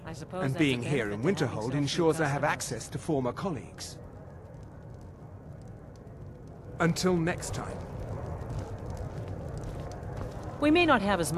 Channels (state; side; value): identical; both; correlation 1.00